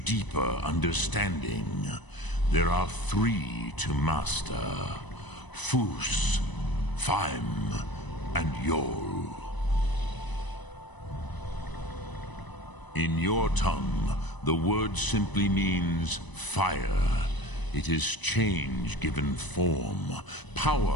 understanding? There are 3 to master. Fus, Faim, and Yol. In your tongue, the word simply means fire. It is change given form,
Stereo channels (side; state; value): right; late; 1.0 ms